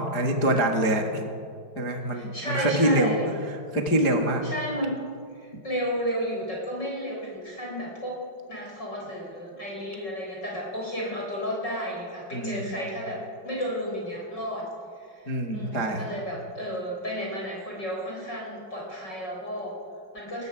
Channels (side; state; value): right; late; 5.0 ms